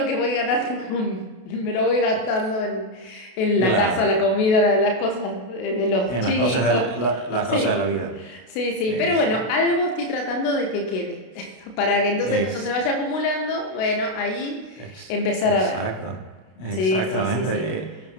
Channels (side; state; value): right; late; 32 ms